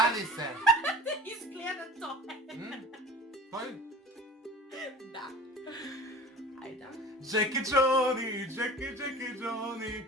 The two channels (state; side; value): normal; both; correlation 0.41